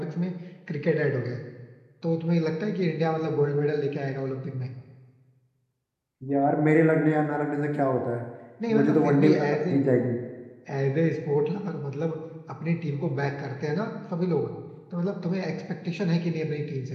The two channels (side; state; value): both; identical; correlation 1.00